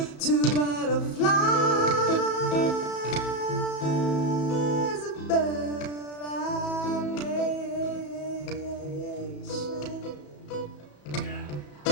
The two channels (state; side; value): late; right; 34 ms